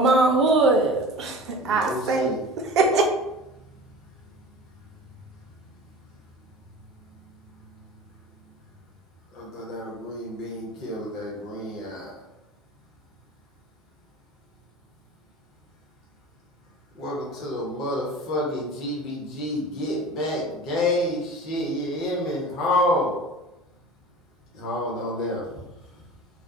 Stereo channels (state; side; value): normal; both; correlation 0.37